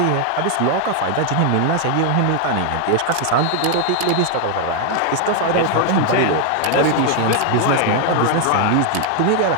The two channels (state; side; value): different; both; correlation 0.00